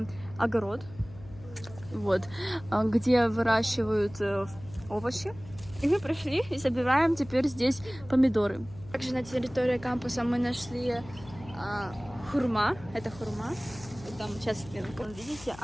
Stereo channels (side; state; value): left; noise; hum, 18 dB below the sound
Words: огород. Вот. Где выращивают овощи. И мы пришли и собираем теперь здесь помидоры. Также на территории кампуса мы нашли хурма. Это хурма. Вот там, сейчас, видите,